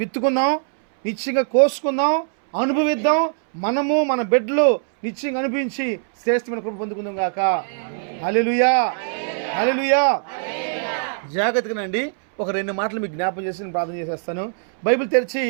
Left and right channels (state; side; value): silent; left; 65 dB below the other